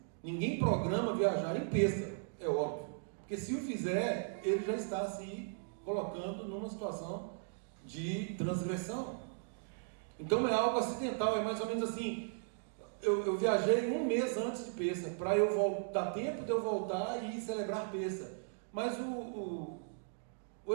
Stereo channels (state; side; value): silent; left; digital silence